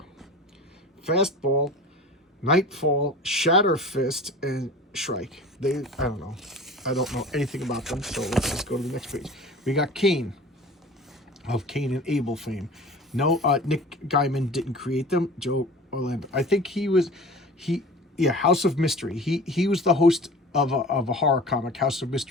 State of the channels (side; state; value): both; normal; correlation 0.39